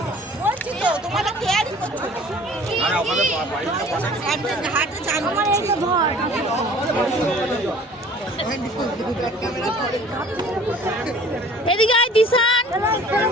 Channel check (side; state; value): both; normal; correlation 0.49